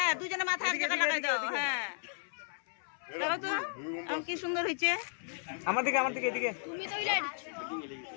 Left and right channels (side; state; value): right; silent; 55 dB below the other